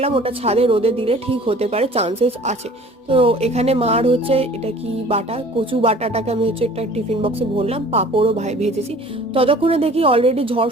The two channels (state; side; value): normal; both; correlation 0.48